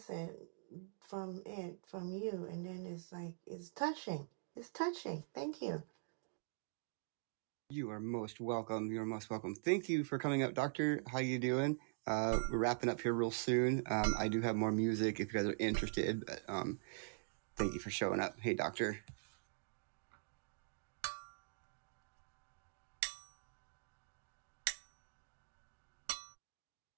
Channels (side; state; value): left; silent; digital silence